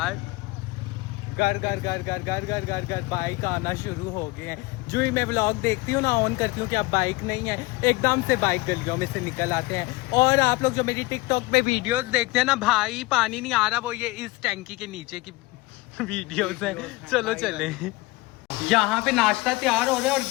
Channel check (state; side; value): quieter; right; 22.0 dB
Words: घर घर घर घर घर घर घर घर बाइक आना शुरू हो गए हैं। जो ही मैं व्लॉग देखती हूँ ना, ऑन करती हूँ कि अब बाइक नहीं है, एकदम से बाइक गलियों में से निकल आते हैं। और आप लोग जो मेरी टिकटॉक पे वीडियोस देखते हैं ना, भाई पानी नहीं आ रहा, वो ये इस टैंकी के नीचे की वीडियोस हैं। चलो चले। यहाँ पे नाश्ता तैयार हो रहा है और